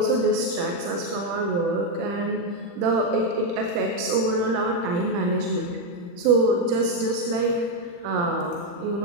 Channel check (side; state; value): left; late; 40 ms